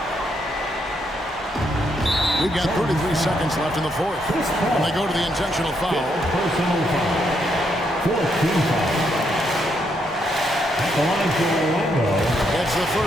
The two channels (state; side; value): normal; both; correlation 0.76